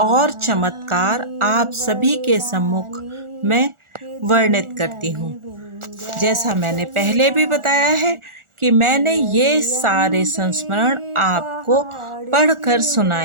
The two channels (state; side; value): late; left; 1.4 ms